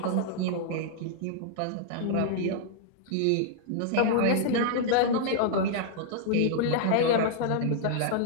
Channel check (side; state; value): both; different; correlation -0.01